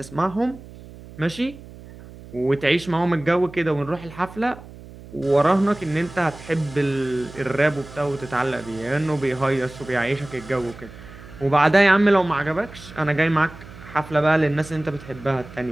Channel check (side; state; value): right; noise; hum, 18 dB below the sound